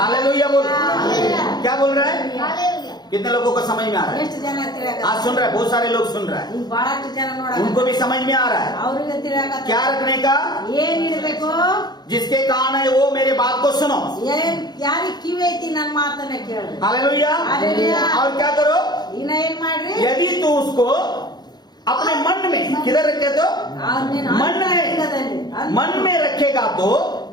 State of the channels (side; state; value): right; late; 0.20 ms